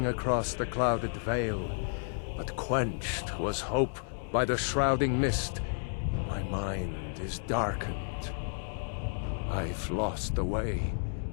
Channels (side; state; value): right; silent; digital silence